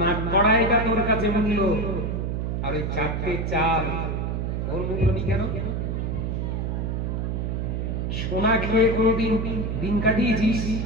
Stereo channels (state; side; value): noise; right; hum, 1 dB below the sound